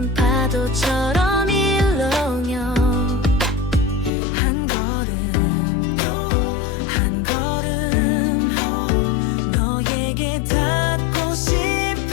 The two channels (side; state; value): right; drops out; at 4.1 s